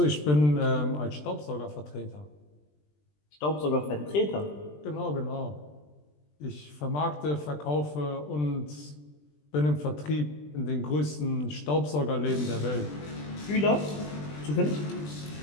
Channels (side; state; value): right; late; 20 ms